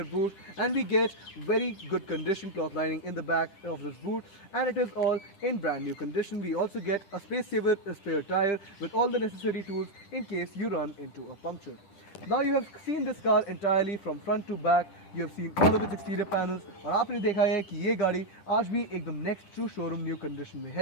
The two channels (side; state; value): right; late; 10 ms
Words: boot, and we get very good condition cloth lining in the back of this boot, and it is all in brand new condition. We also get a space saver spare tire with all the necessary tools in case you run into a puncture. Now you have seen this car entirely from front to back. You have seen all of its exterior panels, और आपने देखा है कि ये गाड़ी आज भी एकदम next to showroom new condition में